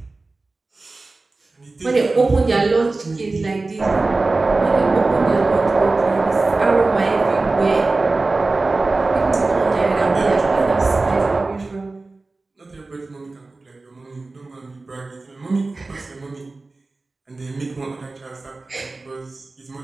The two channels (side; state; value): left; quieter; 3.4 dB